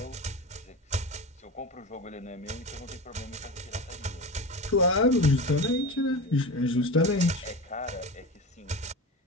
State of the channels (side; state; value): both; normal; correlation 0.27